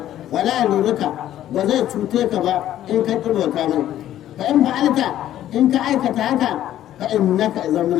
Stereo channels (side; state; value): right; quieter; 12.3 dB